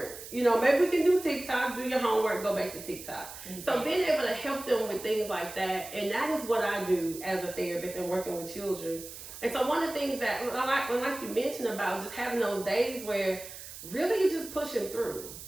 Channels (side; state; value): right; noise; hiss, 13 dB below the sound